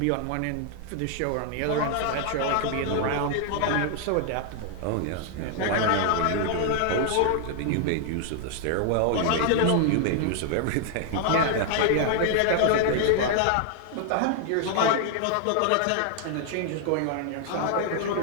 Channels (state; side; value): different; both; correlation 0.00